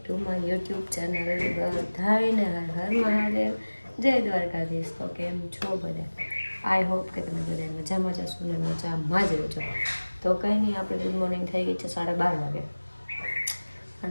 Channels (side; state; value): both; inverted; correlation -1.00